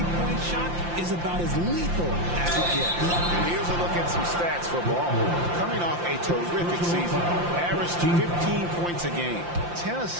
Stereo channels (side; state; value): left; late; 5.8 ms